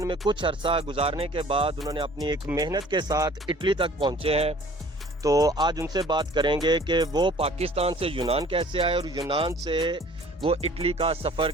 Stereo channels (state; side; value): normal; both; correlation 0.51